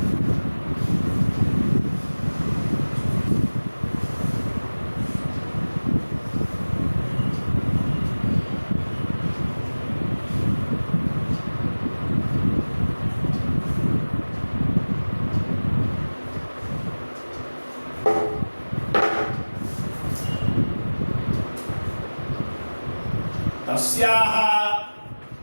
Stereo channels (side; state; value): both; inverted; correlation -1.00